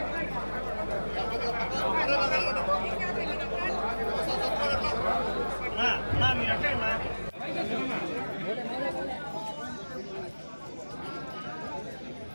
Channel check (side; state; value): both; inverted; correlation -1.00